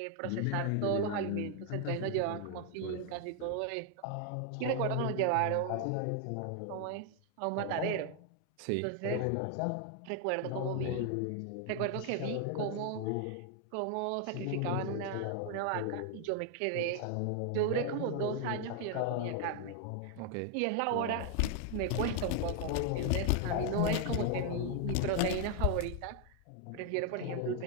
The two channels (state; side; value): different; both; correlation 0.00